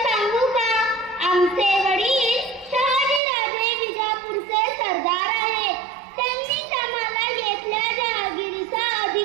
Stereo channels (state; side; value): drops out; left; at 3.2 s